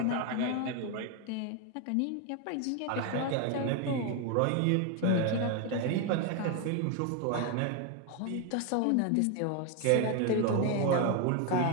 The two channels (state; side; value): different; both; correlation 0.01